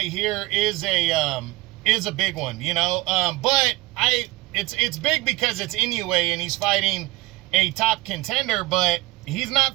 here is a big one, you know, but it's big because it's Inoue and he's fighting a top contender, but he's not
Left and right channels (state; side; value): quieter; left; 20.1 dB